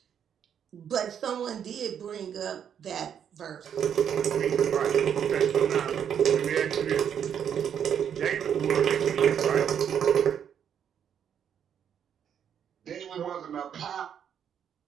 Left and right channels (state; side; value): quieter; left; 8.5 dB